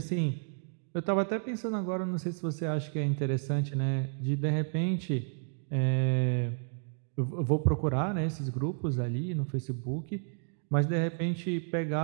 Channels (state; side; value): silent; left; 57 dB below the other